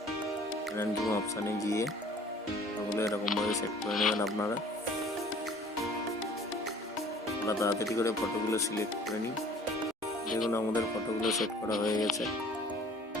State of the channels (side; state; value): both; normal; correlation 0.51